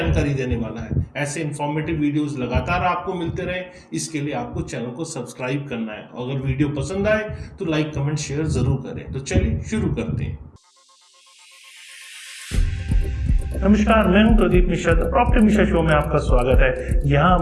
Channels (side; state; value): both; identical; correlation 1.00